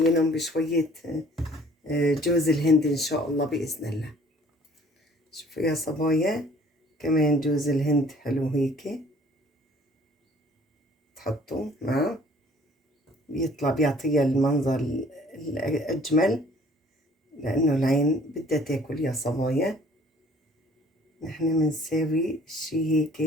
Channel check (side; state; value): both; normal; correlation 0.55